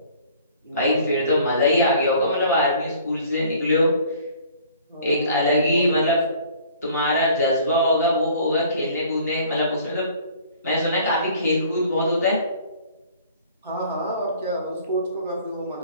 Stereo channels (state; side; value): inverted; both; correlation -0.52